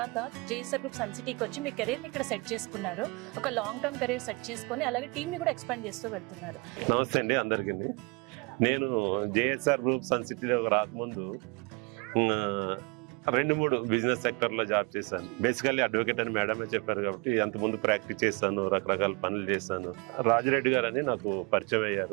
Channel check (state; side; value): quieter; left; 29.4 dB